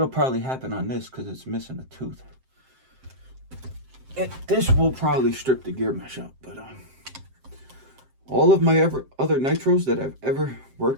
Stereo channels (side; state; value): left; late; 7.6 ms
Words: probably happen on this because it's missing a tooth. This will probably strip the gear mesh out, but all of my other nitros that I've ever